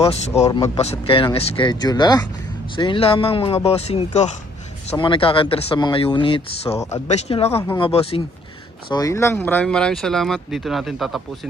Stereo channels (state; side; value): normal; both; correlation 0.63